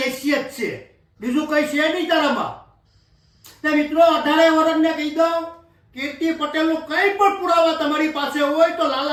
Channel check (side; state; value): both; identical; correlation 1.00